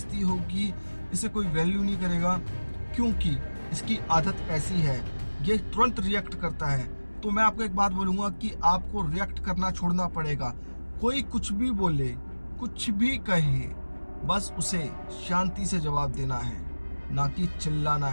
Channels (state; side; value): inverted; both; correlation -1.00